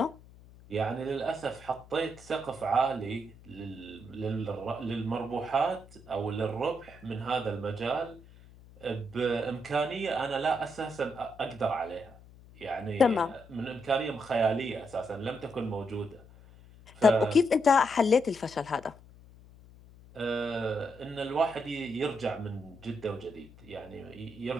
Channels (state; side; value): noise; left; hum, 22 dB below the sound